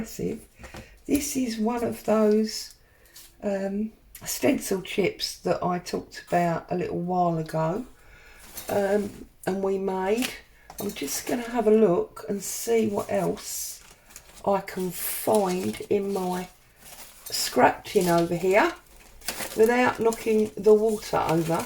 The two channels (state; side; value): identical; both; correlation 1.00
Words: This is one of those stencil chips that I talked about a little while ago, and we made. I'm just going to have a look and see what else I can find in my scrap tin over here without knocking the water over,